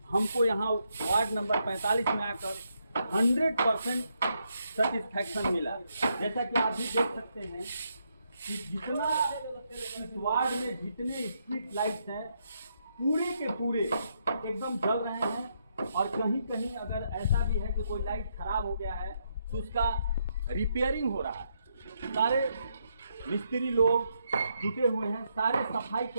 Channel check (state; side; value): inverted; both; correlation -0.78